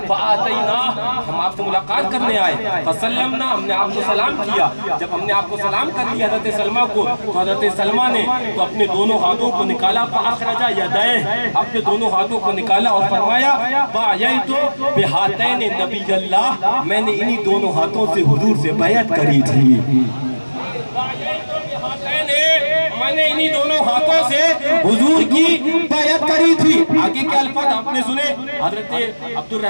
فآتیناہ، ہم آپ سے ملاقات کرنے آئے، فسلمنا، ہم نے آپ کو سلام کیا۔ جب ہم نے آپ کو سلام کر لیا حضرت سلمہ کو، تو حضرت سلمہ نے تو اپنے دونوں ہاتھوں کو نکالا، فاخرج یدیہ، اپنے دونوں ہاتھوں کو نکالا اور فرمایا بایعت بہاتین نبی اللہ، میں نے انہی دونوں ہاتھوں سے حضور سے بیعت کری تھی۔ میں نے انہی دونوں ہاتھوں سے حضور کی بیعت کری تھی۔ آگے کے الفاظ آپ نے سنے، حضرت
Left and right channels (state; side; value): inverted; both; correlation -1.00